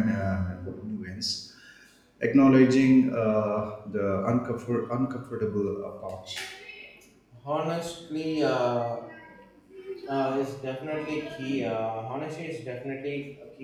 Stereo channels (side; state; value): both; identical; correlation 1.00